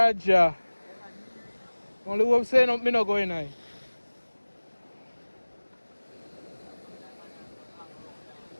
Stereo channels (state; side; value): inverted; both; correlation -1.00